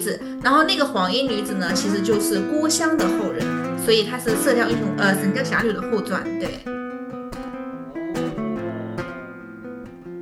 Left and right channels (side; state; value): both; identical; correlation 1.00